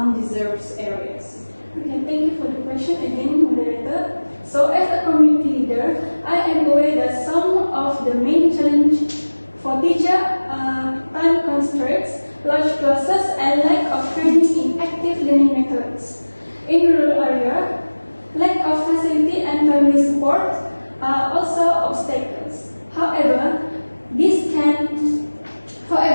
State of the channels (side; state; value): both; inverted; correlation -1.00